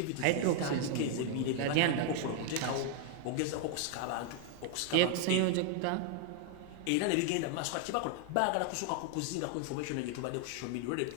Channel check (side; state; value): both; different; correlation 0.00